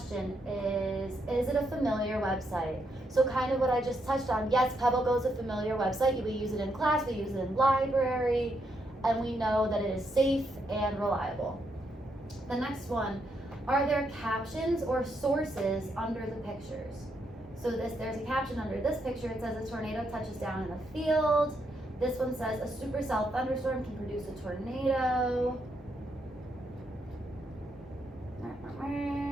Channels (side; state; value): both; normal; correlation 0.78